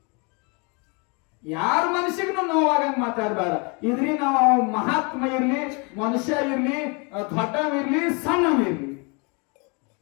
ಯಾರ ಮನುಷ್ಯಗೂ ನೋವಾಗಂಗ್ ಮಾತಾಡಬೇಡ. ಇದ್ರಿ ನಾವು ಮಹಾತ್ಮ ಇರ್ಲಿ, ಮನುಷ್ಯ ಇರ್ಲಿ, ದೊಡ್ಡವಿರ್ಲಿ, ಸಣ್ಣವಿರ್ಲಿ,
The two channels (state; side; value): quieter; right; 32.3 dB